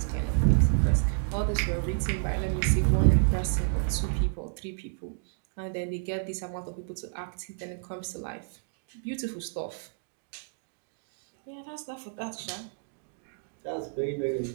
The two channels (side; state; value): left; silent; digital silence